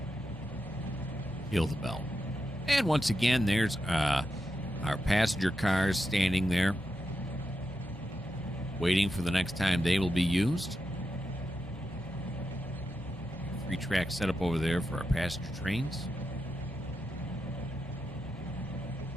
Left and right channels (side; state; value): both; normal; correlation 0.87